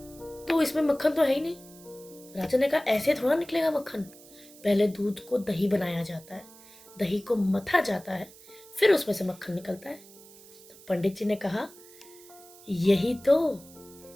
तो इसमें मक्खन तो है ही नहीं। राजा ने कहा, ऐसे थोड़ा निकलेगा मक्खन। पहले दूध को दही बनाया जाता है, दही को मथा जाता है, फिर उसमें से मक्खन निकलता है। तो पंडित जी ने कहा, यही तो,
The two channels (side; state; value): right; noise; hiss, 22 dB below the sound